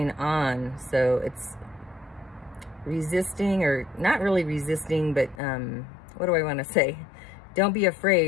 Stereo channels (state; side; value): drops out; right; at 5.4 s